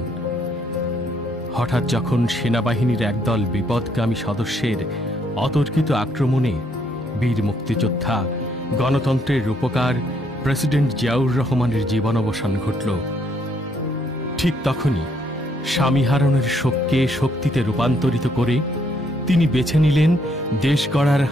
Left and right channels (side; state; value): both; normal; correlation 0.70